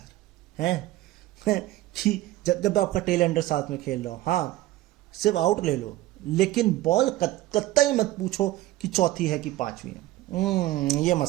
हैं कि जब आपका टेल एंडर साथ में खेल रहा हो, हाँ सिर्फ आउट ले लो, लेकिन बॉल कतई मत पूछो कि चौथी है कि 5वीं है। ये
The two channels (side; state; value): left; quieter; 16.3 dB